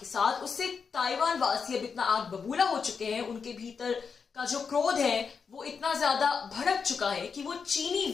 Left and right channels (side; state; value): right; quieter; 5.8 dB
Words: साथ, उससे ताइवान वासी अब इतना आग बबूला हो चुके हैं, उनके भीतर का जो क्रोध है वो इतना ज्यादा भड़क चुका है कि वो चीनी